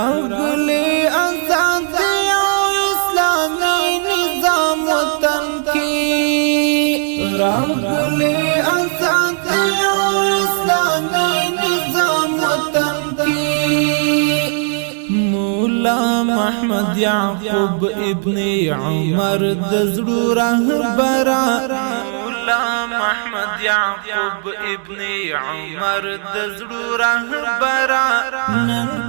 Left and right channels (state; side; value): silent; left; 55 dB below the other